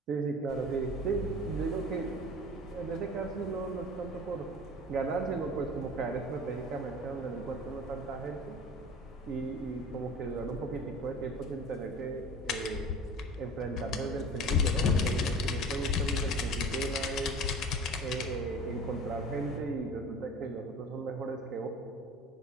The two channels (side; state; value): both; normal; correlation 0.40